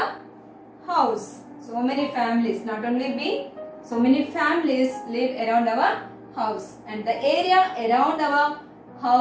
house. So many families, not only we, so many families live around our house, and the area around our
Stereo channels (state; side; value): identical; both; correlation 1.00